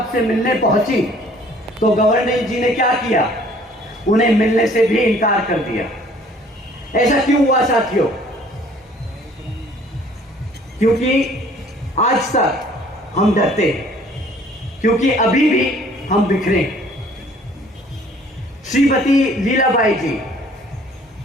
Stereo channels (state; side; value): normal; both; correlation 0.56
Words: से मिलने पहुंची, तो गवर्नर जी ने क्या किया? उन्हें मिलने से भी इनकार कर दिया। ऐसा क्यों हुआ साथियों? क्योंकि आज तक हम डरते हैं, क्योंकि अभी भी हम बिखरे। श्रीमती लीलाबाई जी,